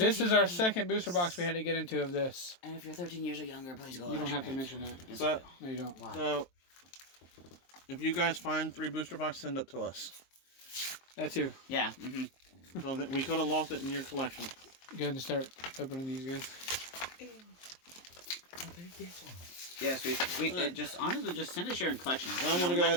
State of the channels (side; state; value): right; late; 23 ms